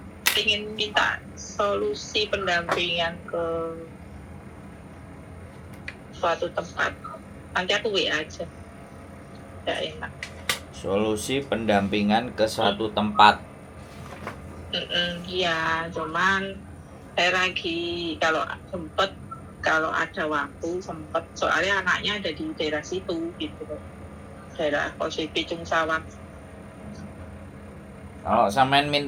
ingin minta solusi pendampingan ke suatu tempat. Nanti aku WA aja. Tidak enak. Solusi pendampingan ke suatu tempat. Iya, cuman saya lagi kalau ada waktu sempet, soalnya anaknya ada di daerah situ gitu, daerah Kose Picung Sawat. Kalau sampean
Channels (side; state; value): both; identical; correlation 1.00